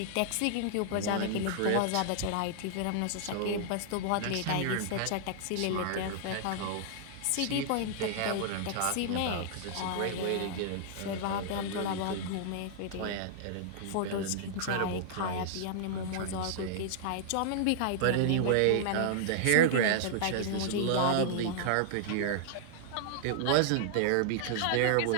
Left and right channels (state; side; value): different; both; correlation -0.01